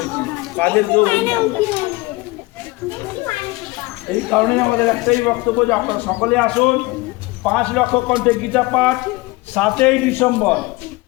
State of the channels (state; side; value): quieter; right; 22.2 dB